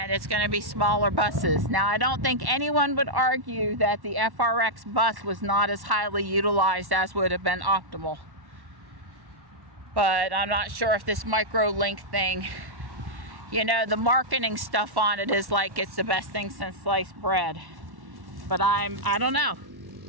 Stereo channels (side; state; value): left; late; 1.1 ms